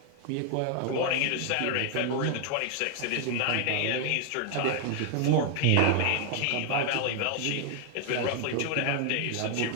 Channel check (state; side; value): different; both; correlation 0.00